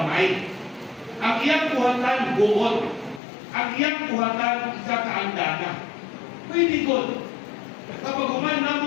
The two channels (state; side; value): drops out; right; at 3.2 s